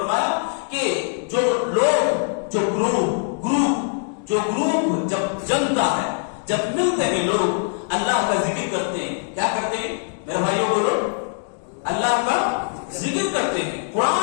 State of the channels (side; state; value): right; silent; digital silence